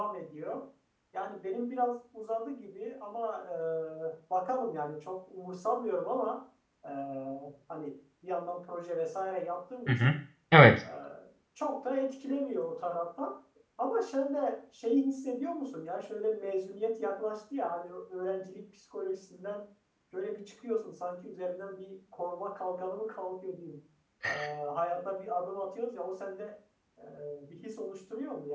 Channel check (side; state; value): both; identical; correlation 1.00